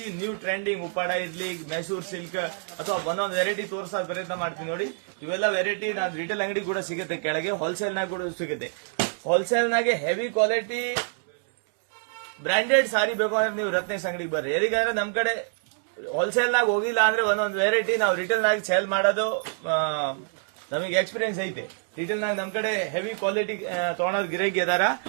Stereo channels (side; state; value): left; silent; digital silence